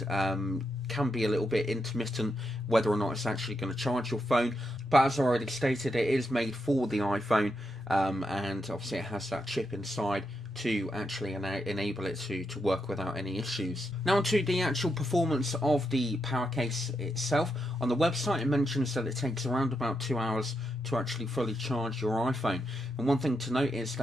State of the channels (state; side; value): normal; both; correlation 0.83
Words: can be a little bit intermittent whether or not it's actually going to charge your phone. But as I already stated, it is made for the iPhone, and obviously it has that chip inside to actually enable it to work without any issues. Now onto the actual performance of the Powercase itself. On the website it mentions that it takes around about 2 hours to actually fully charge your iPhone. And one thing to note is